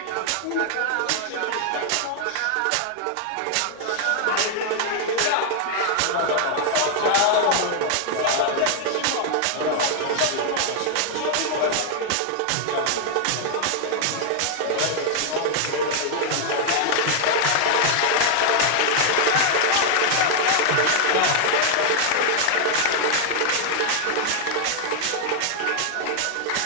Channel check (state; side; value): different; both; correlation 0.00